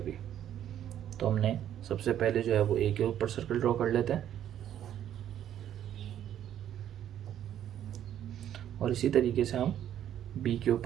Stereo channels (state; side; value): quieter; left; 10.7 dB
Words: तो हमने सबसे पहले जो है वो ए के ऊपर सर्कल ड्रॉ कर लेते हैं और इसी तरीके से हम बी के